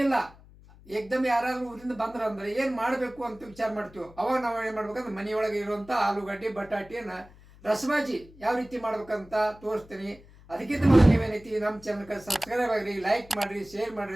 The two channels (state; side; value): noise; left; hum, 23 dB below the sound